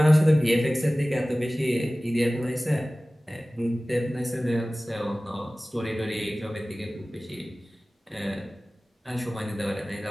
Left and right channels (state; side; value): normal; both; correlation 0.97